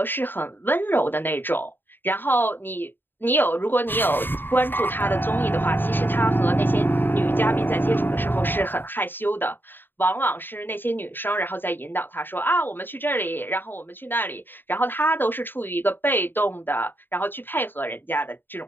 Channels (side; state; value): right; late; 0.095 ms